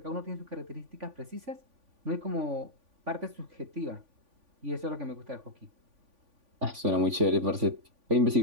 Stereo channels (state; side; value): late; left; 3.5 ms